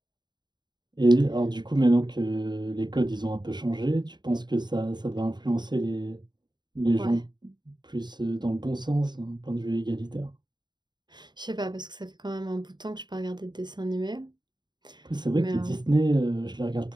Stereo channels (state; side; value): late; left; 0.21 ms